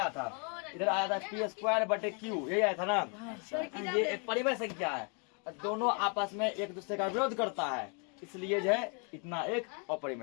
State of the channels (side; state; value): right; quieter; 37.4 dB